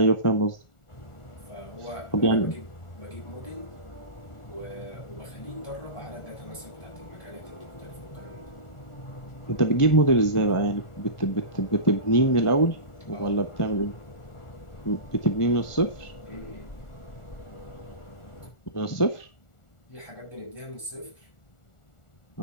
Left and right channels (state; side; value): late; right; 1.4 ms